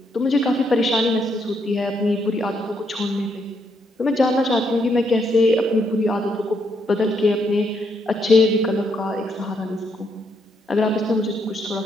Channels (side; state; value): both; normal; correlation 0.76